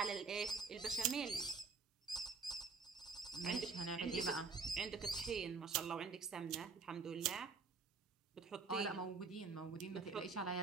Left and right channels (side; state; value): left; quieter; 4.7 dB